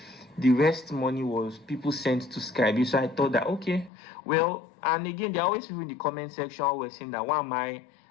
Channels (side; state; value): right; drops out; at 3.9 s